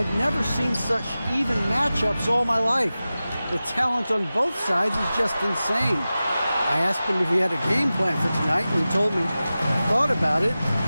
never seen such even matchups all my life. The talent on both sides is just insane. I asked him if he had a game plan for tonight, and he told me he thought about it,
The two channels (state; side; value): inverted; both; correlation -0.95